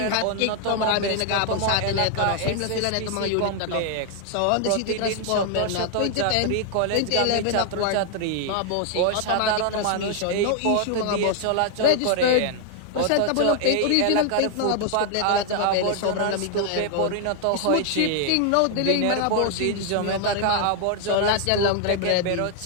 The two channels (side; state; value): both; different; correlation 0.00